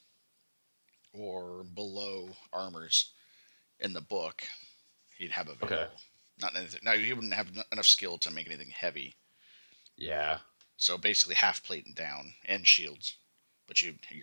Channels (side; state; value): both; inverted; correlation -1.00